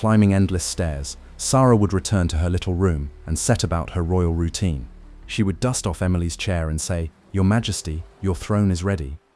endless stairs, Sarah would return to her little room and set about her royal routine. She would dust off Emily's chair and say, "Your Majesty, your throne is ready."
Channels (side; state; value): both; identical; correlation 1.00